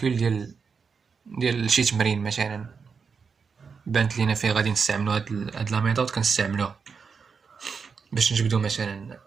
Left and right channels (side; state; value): left; quieter; 5.6 dB